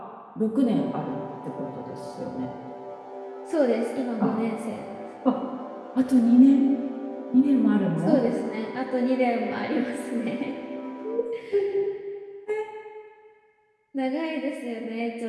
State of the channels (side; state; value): both; identical; correlation 1.00